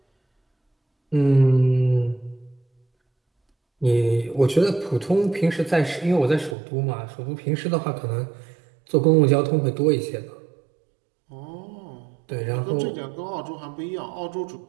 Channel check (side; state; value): left; drops out; at 6.6 s